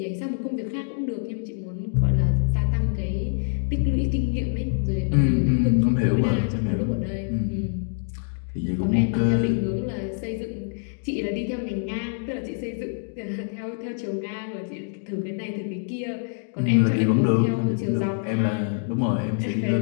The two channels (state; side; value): silent; right; digital silence